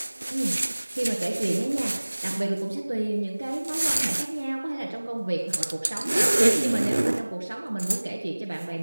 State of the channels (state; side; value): inverted; both; correlation -1.00